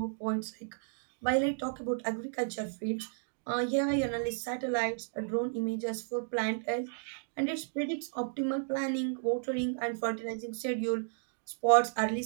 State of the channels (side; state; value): left; silent; digital silence